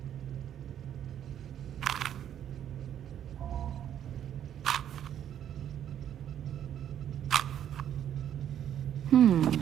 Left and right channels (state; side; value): quieter; left; 10.1 dB